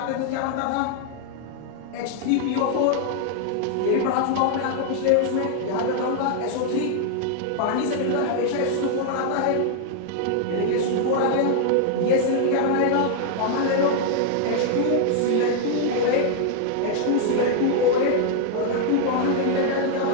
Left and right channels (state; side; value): different; both; correlation 0.00